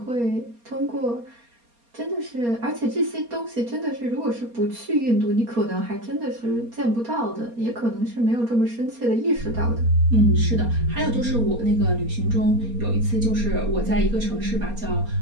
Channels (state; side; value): late; left; 4.3 ms